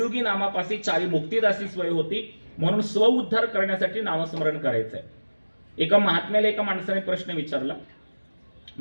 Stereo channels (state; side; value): inverted; both; correlation -1.00